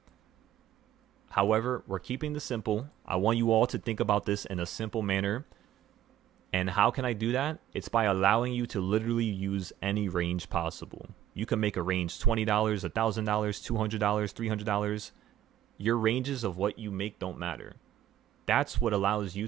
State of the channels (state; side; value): quieter; left; 11.9 dB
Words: However, we're keeping this simple. I want you all to think about this in a simple manner. And how can I do that? It's by allowing you to literally use any range possible. You can make a range $20, $1,000, $200, $300. Your ranges of what you make don't matter. That's what allows you